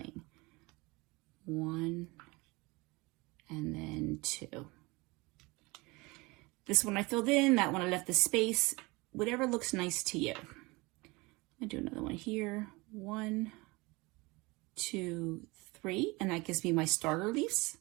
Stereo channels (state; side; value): quieter; left; 24.3 dB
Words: 1 and then 2. This one I filled in, that one I left the space, whatever looks nice to you. I'm gonna do another one here. 1, 2, 3, and that gives me my starter leaves.